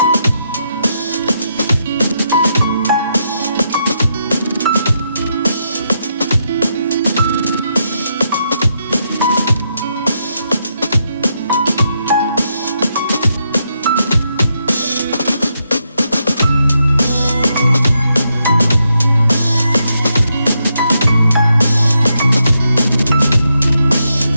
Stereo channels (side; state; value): both; inverted; correlation -0.81